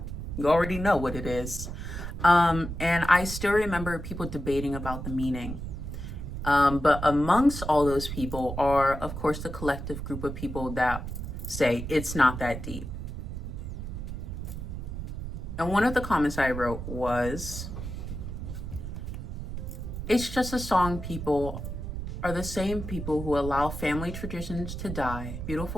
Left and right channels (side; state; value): right; noise; rumble, 6 dB below the sound